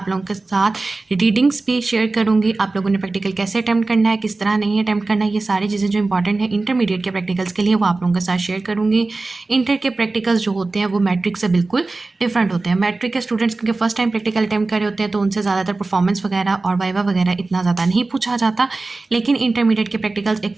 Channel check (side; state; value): left; quieter; 3.4 dB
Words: लोगों के साथ रीडिंग्स भी शेयर करूंगी, आप लोगों ने प्रैक्टिकल कैसे अटैम्प्ट करना है, किस तरह नहीं अटैम्प्ट करना है, ये सारी चीज़ें जो इंपॉर्टेंट है इंटरमीडिएट के प्रैक्टिकल्स के लिए वो आप लोगों के साथ शेयर करूंगी। इंटर के प्रैक्टिकल्स जो होते हैं वो मैट्रिक से बिल्कुल डिफरेंट होते हैं। मैट्रिक के स्टूडेंट्स क्योंकि फर्स्ट टाइम प्रैक्टिकल अटैम्प्ट कर रहे होते हैं तो उनसे ज़्यादातर परफॉर्मेंस वगैरह और वाइवा वगैरह इतना ज़्यादा नहीं पूछा जाता, लेकिन इंटरमीडिएट के प्रैक्टिकल्स